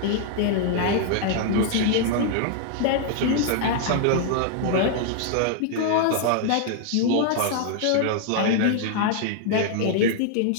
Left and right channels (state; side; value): different; both; correlation 0.00